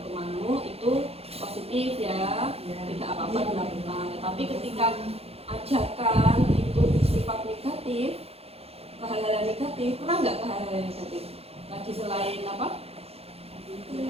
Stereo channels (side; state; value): left; late; 0.29 ms